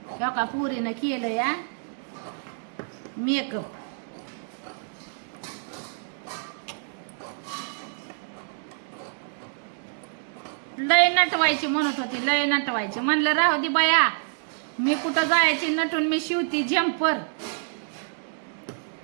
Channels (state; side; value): silent; left; digital silence